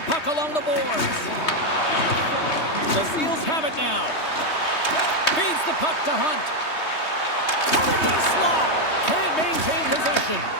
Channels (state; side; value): late; right; 3.2 ms